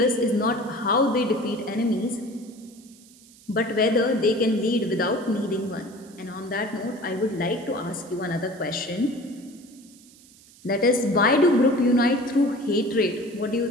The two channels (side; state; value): right; noise; hiss, 25 dB below the sound